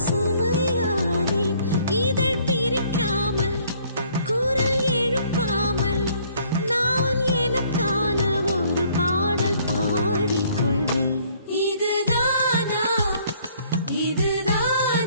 சுமையானேன் இதழ் பிரிக்காமல் குரல் எழுப்பாமல் நான் எனக்கான ஒரு பாடல் பாடிக்கொள்வேன் இதுதானா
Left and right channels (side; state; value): both; inverted; correlation -0.61